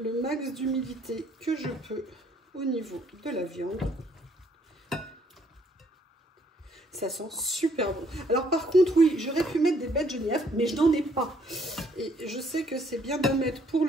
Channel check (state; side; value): normal; both; correlation 0.66